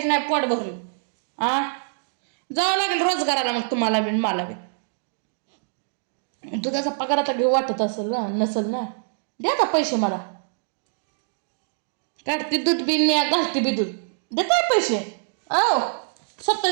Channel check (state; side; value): silent; left; digital silence